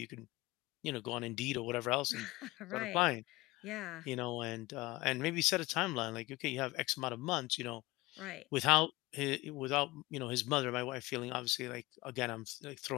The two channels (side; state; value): right; quieter; 20.9 dB